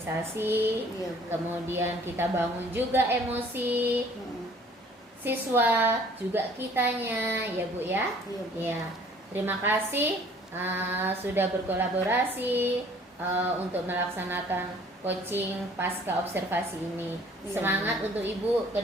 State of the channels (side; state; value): both; normal; correlation 0.55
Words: kemudian kita bangun juga emosi siswa, juga kitanya ya Bu ya. Ya, terima kasih sudah berkolaborasi untuk melaksanakan coaching pasca observasi ini. Semangat untuk Ibu ke